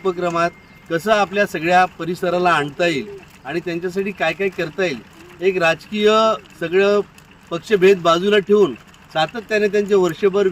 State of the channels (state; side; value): identical; both; correlation 1.00